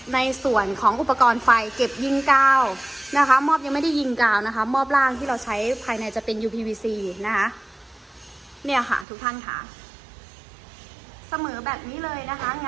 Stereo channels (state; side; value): drops out; left; at 9.1 s